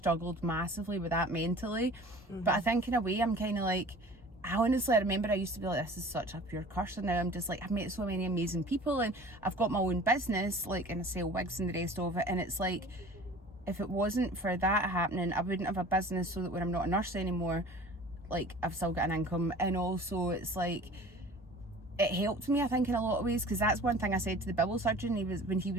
massively with that mentally. But I think in a way, I'm kind of like, I remember I used to be like, this is such a pure curse, and now I'm just like, I've met so many amazing people, and I've got my own business, like, and I sell wigs and the rest of it, and it's like, if it wasn't for that happening, I wouldn't have a business, so that when I'm not a nurse anymore, like, I've still got an income. And also it's like, it helped me, I think, in a lot of ways, because that's one thing I said to the bowel surgeon. When he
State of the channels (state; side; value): normal; both; correlation 0.44